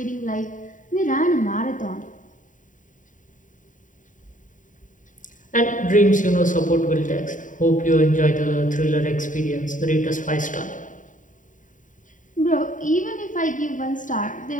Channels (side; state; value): right; late; 0.38 ms